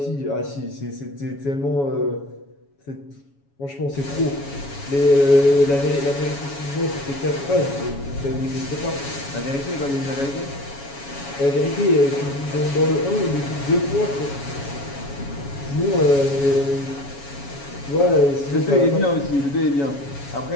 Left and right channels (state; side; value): late; right; 7.2 ms